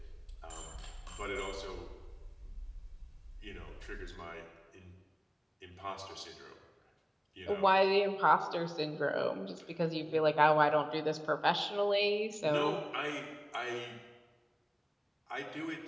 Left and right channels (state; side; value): identical; both; correlation 1.00